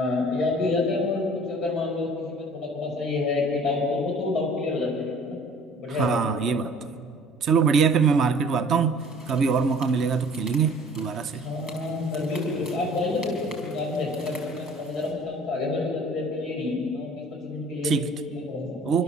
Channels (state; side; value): normal; both; correlation 0.50